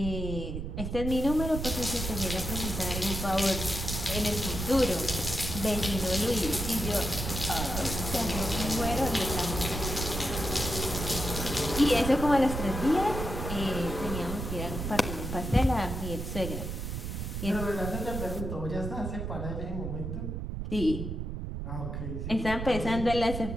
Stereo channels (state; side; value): noise; right; rumble, 4 dB below the sound